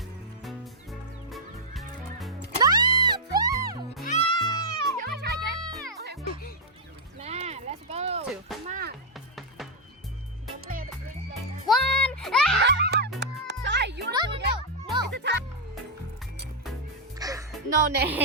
Let's go. 2. Come on. Go play the big game. 1. Sorry, you No, no, no, no. It's a tie. No,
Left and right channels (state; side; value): normal; both; correlation -0.03